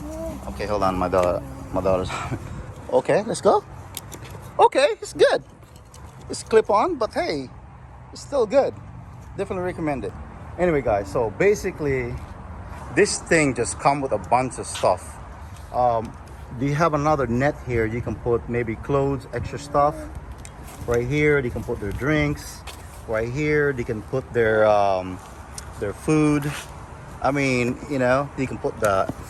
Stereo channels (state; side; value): identical; both; correlation 1.00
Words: Okay, hold on, my daughter's. Okay, let's go. Okay, it's good. It's clip on, but hey, it's still good. Definitely recommend it. Anyway, guys, so basically, this thing just comes with a bunch of stuff. Do you have another net here? You can put maybe clothes, extra stuff. Right here, they can put their drinks. Right here, they can put their food. I mean, you know, you can put the